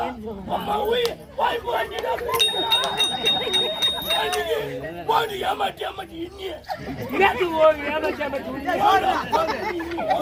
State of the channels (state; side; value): identical; both; correlation 1.00